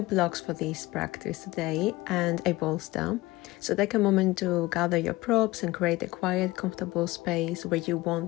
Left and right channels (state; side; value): quieter; right; 19.8 dB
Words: blocks for this practice today and a bolster. So take a moment to gather your props and create a quiet, comfortable space where you won't